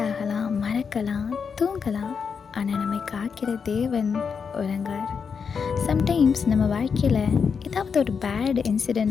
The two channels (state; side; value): quieter; right; 6.1 dB